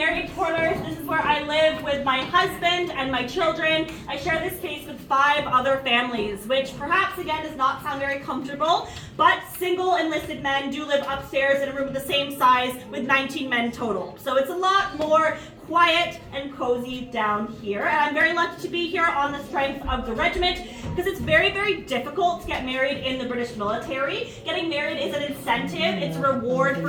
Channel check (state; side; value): identical; both; correlation 1.00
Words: Quarters. This is where I live with my husband and my children. I share this space with 5 other families, which perhaps, again, does not sound very comfortable, but single enlisted men do live upstairs in a room the same size with 19 men total. So it's a lot more quiet and cozy down here, and I'm very lucky to be here on the strength of the regiment because it's very, very difficult to get married in the British military. Getting married is an incentive, it's a reward